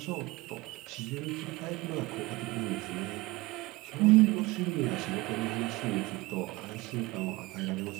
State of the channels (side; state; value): left; quieter; 21.4 dB